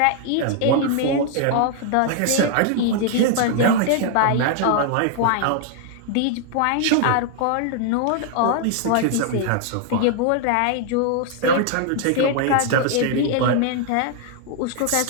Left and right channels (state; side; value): different; both; correlation 0.00